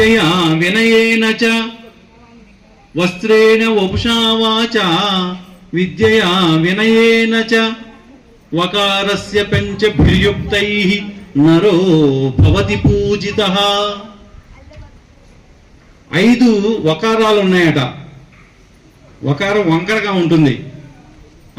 వినయేన చ, వస్త్రేణ వపుషా వాచ విద్యయా వినయేన చ, వకారస్య పంచభిర్యుక్తైః నరో భవతి పూజితః. 5 వకారాలు ఉన్నాయట. వకారం వంకరగా ఉంటుంది,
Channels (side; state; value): both; identical; correlation 1.00